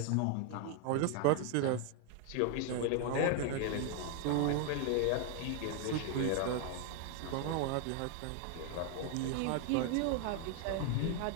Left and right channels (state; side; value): different; both; correlation 0.00